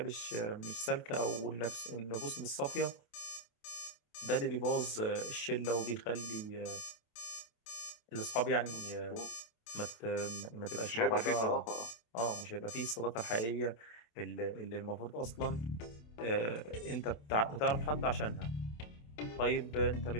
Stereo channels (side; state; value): right; late; 27 ms